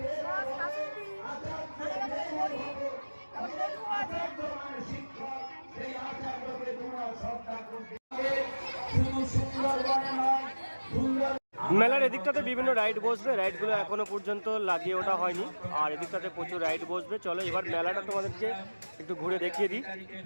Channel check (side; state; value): both; inverted; correlation -1.00